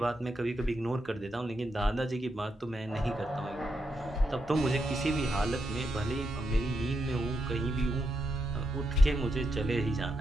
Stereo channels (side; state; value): both; normal; correlation 0.83